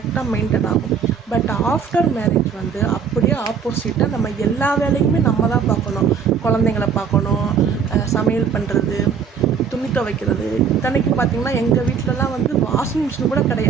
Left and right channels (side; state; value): left; quieter; 6.5 dB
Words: மெயின்டைன் ஆகும். பட் ஆஃப்டர் மேரேஜ் வந்து அப்படியே ஆப்போசிட்டாக நம்ம எல்லா வேலையுமே நம்ம தான் பார்க்கணும். குழந்தைங்கள பார்க்கணும், சமையல் பண்ணுறது, துணி துவைக்கிறது. இத்தனைக்கு பார்த்திங்கன்னா எங்கள் வீட்டிலலாம் வந்து வாஷிங் மிஷின் கூட